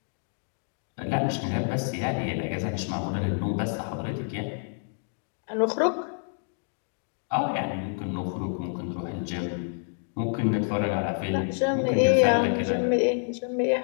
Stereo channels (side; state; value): right; silent; digital silence